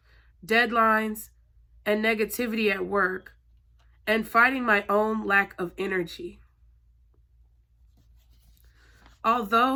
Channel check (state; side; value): identical; both; correlation 1.00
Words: deadlines, and negativity at work, and fighting my own lack of energy.